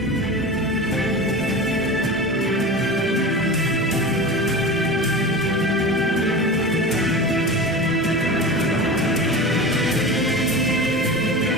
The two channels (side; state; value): both; normal; correlation 0.30